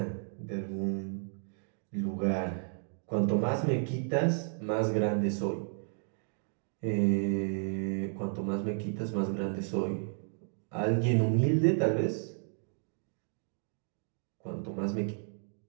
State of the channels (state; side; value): silent; left; 56 dB below the other